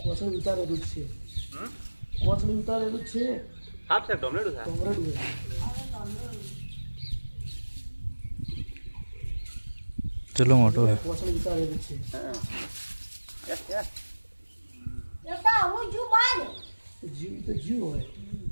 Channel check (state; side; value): inverted; both; correlation -1.00